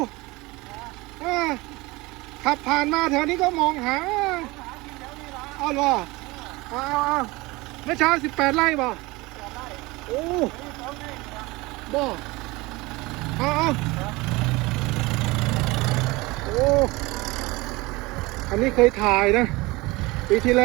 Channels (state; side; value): quieter; left; 22.4 dB